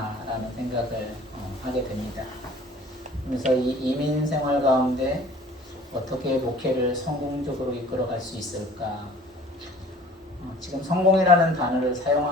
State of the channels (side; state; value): both; normal; correlation 0.49